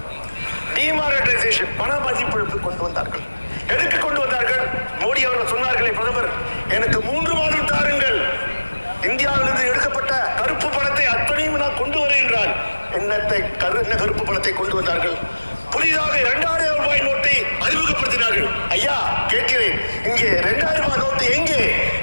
டிமானிட்டைசேஷன், பண மதிப்பிழப்பு கொண்டு வந்தார்கள். எதுக்கு கொண்டு வந்தார்கள்? மோடி அவர்கள் சொன்னார்களே, பிரதமர் எனக்கு 3 மாதம் தாருங்கள், இந்தியாவிலிருந்து எடுக்கப்பட்ட கருப்பு பணத்தை அத்தனையும் நான் கொண்டு வரேன் என்றால் என்ன கருப்பு பணத்தை கொண்டு வந்தார்கள்? புதிதாக 2000 ரூபாய் நோட்டை அறிமுகப்படுத்தினார்கள். ஐயா கேட்கிறேன், இங்கே 2000 ரூபாய் நோட்டு எங்கே?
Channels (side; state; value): both; inverted; correlation -1.00